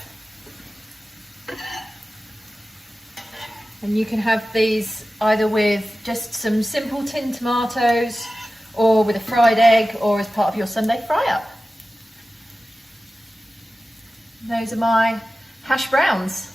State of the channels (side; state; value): both; normal; correlation 0.95